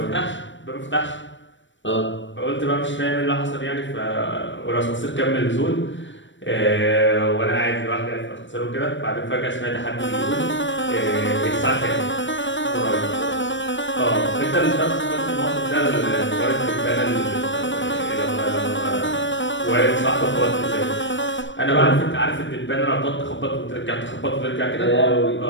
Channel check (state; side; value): late; right; 0.54 ms